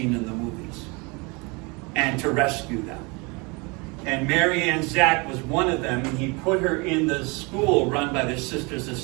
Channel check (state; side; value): quieter; left; 28.4 dB